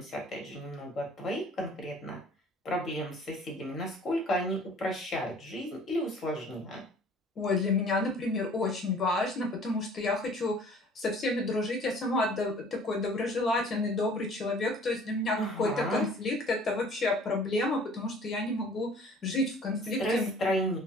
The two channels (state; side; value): normal; both; correlation 0.51